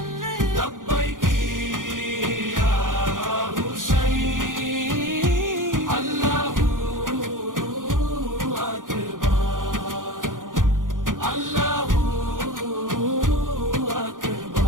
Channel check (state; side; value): late; left; 0.89 ms